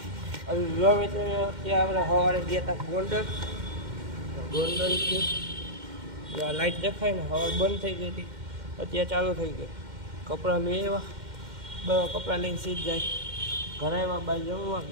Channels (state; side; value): late; left; 2.1 ms